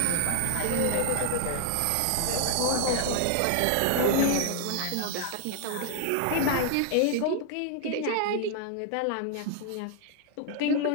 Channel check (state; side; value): different; both; correlation 0.00